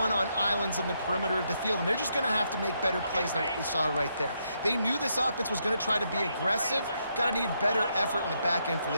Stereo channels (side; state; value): both; inverted; correlation -0.78